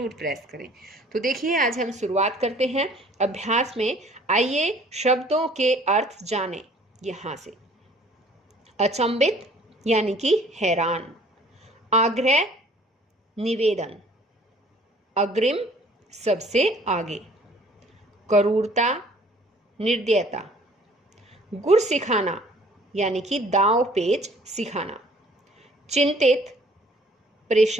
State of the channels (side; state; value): both; normal; correlation 0.55